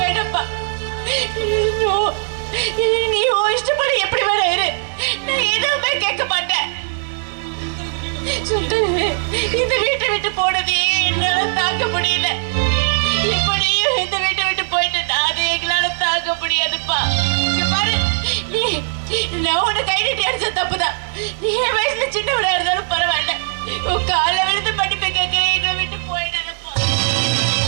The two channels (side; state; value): left; silent; digital silence